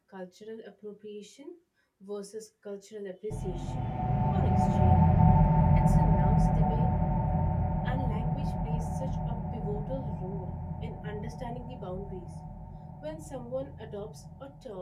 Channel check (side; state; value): both; identical; correlation 1.00